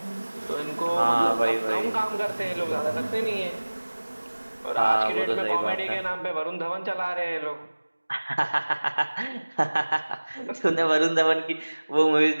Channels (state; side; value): inverted; both; correlation -1.00